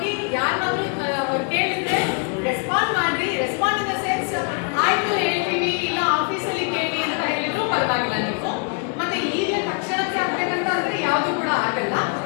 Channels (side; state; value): right; quieter; 36.9 dB